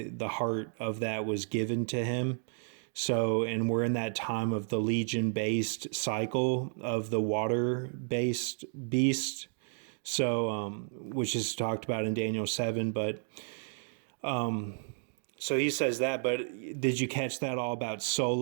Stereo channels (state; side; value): silent; left; 56 dB below the other